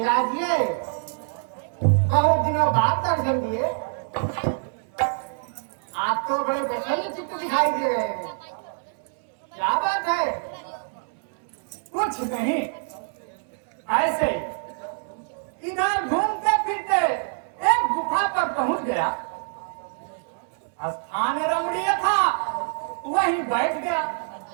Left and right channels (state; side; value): silent; left; digital silence